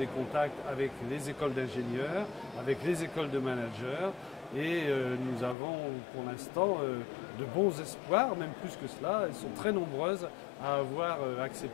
contacts avec les écoles d'ingénieurs, avec les écoles de managers et nous avons pour l'instant de bons espoirs, même plus que cela. Elles sont très nombreuses à avoir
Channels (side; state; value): right; drops out; at 5.6 s